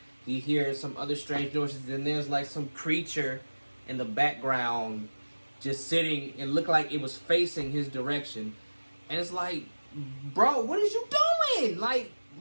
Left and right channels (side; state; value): both; inverted; correlation -1.00